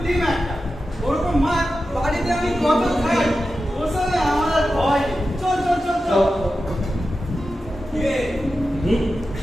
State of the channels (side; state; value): both; normal; correlation 0.92